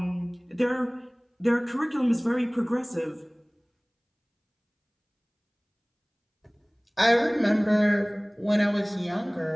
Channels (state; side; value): identical; both; correlation 1.00